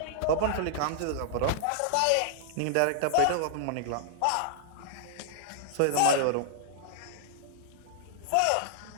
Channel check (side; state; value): both; different; correlation -0.01